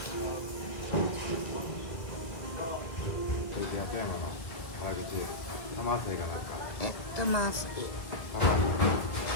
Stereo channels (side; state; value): right; late; 1.7 ms